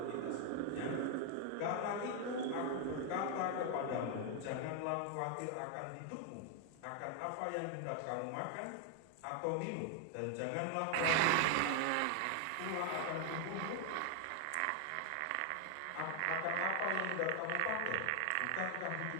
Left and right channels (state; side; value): different; both; correlation 0.00